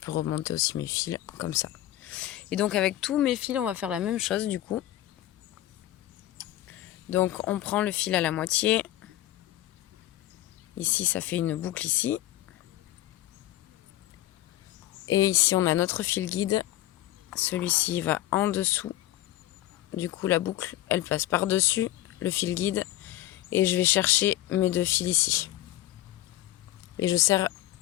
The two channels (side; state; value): right; quieter; 14.6 dB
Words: remonter aussi mes fils, comme ça. Et donc, avec tous mes fils, on va faire la même chose, du coup. Donc, on prend le fil à la moitié. Ici, ça fait une boucle ici. Et ici, on a notre fil guide. Celui-ci va en dessous. Du coup, la boucle, elle passe par-dessus le fil guide. Et je vais chercher mes 2 fils ici. Et je serre